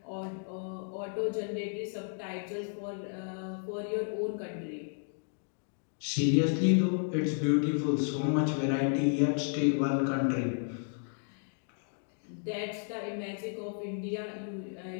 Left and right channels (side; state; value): right; silent; 56 dB below the other